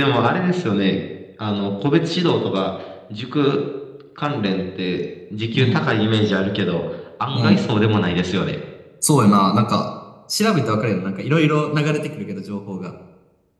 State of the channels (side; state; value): both; identical; correlation 1.00